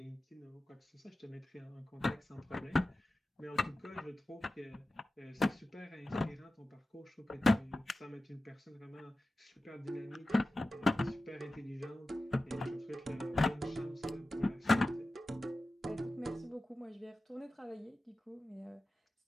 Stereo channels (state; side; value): normal; both; correlation 0.94